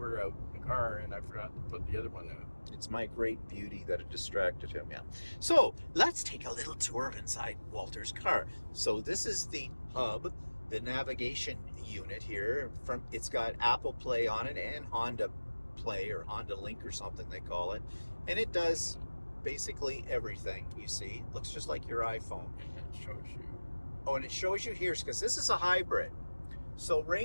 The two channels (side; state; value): both; inverted; correlation -1.00